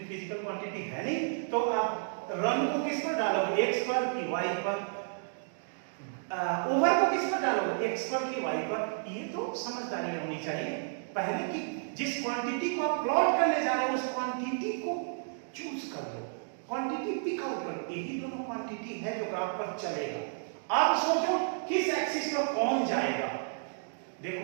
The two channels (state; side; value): silent; left; digital silence